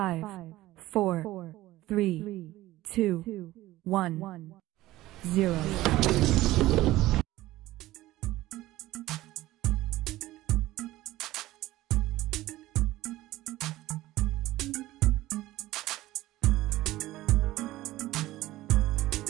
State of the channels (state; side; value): quieter; left; 16.7 dB